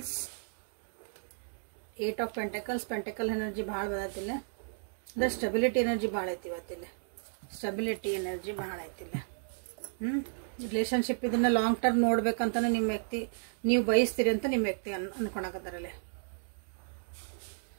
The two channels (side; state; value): left; silent; digital silence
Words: 8 of pentacles. Pentacle energy ಭಾಳ ಬದತಿಲ್ಲ, ಅಂದ್ರೆ ಸ್ಟೆಬಿಲಿಟಿ ಎನರ್ಜಿ ಭಾಳ ಐತಿ ಇವತ್ತಿಲ್ಲ. ಸ್ಟೆಬಿಲಿಟಿ ಎನರ್ಜಿ ಭಾಳ ಐತಿಲ್ಲ. ರಿಲೇಶನ್ಶಿಪ್ ಇದನ್ನ ಲಾಂಗ್ ಟರ್ಮ್ ನೋಡ್ಬೇಕಂತಾನೆ ನಿಮ್ಮ ವ್ಯಕ್ತಿ ನೀವು ಬಯಸ್ತೀರಿ ಅಂತ ನಿಮ್ಮ ವ್ಯಕ್ತಿ ಅನ್ಕೊಳಕತ್ತಾರಲ್ಲೇ.